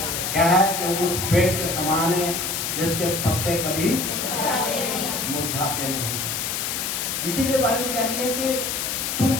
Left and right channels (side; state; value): left; noise; hiss, 2 dB below the sound